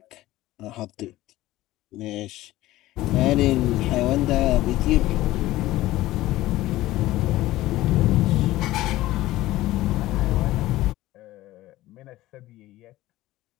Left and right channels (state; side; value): quieter; right; 16.5 dB